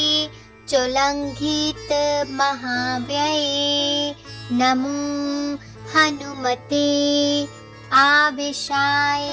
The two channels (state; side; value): identical; both; correlation 1.00